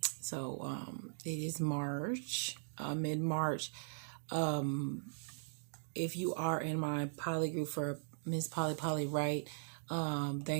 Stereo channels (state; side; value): silent; left; digital silence